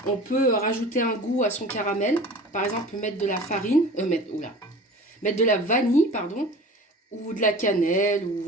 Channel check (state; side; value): normal; both; correlation 0.39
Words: on peut rajouter un goût à son caramel. Par exemple, mettre de la farine, mettre de la vanille, pardon, ou de la cannelle, ou